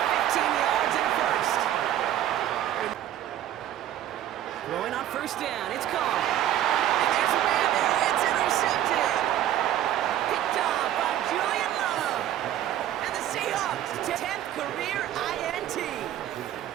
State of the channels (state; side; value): quieter; left; 12.0 dB